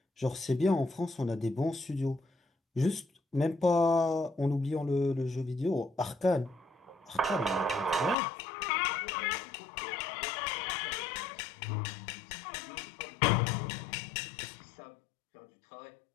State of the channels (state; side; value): drops out; right; at 8.2 s